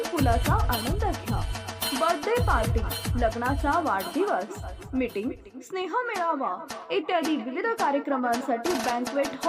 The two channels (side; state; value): both; identical; correlation 1.00